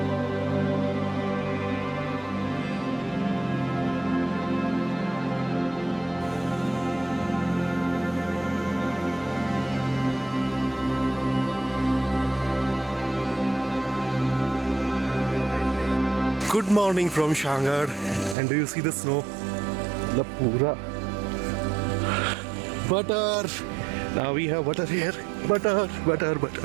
Good morning from Shanghai, and do you see the snow? The pura butter. Now we have butter here. Butter.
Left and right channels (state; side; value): drops out; left; at 18.4 s